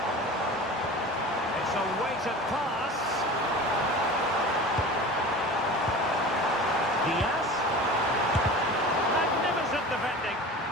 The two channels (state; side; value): normal; both; correlation 0.36